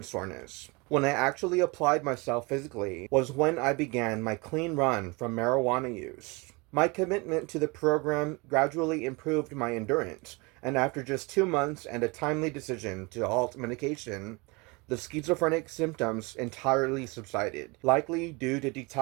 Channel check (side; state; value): left; quieter; 27.3 dB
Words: soreness. When I actually applied myself physically was when I began my clean run from marijuana use. My commitment to the program gradually improved my endurance, and after just 2 months and a timely decision to halt medication, the schizophrenic symptoms entirely subsided, likely due to